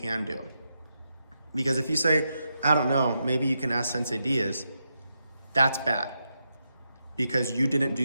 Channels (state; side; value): inverted; both; correlation -0.85